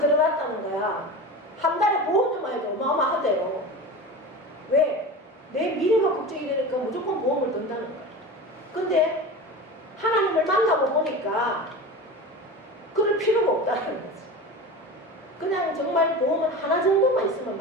거야. 한 달에 보험료만 해도 어마어마하대요. 왜? 내 미래가 걱정이 되니까 무조건 보험을 든다는 거야. 근데 하나님을 만나고 보니까 그럴 필요가 없다는 거지. 그냥 정말 보험은 하나 정도만 있으면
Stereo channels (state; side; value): normal; both; correlation 0.30